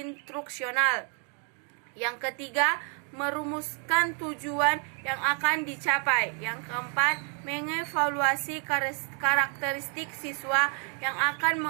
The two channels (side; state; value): left; quieter; 37.2 dB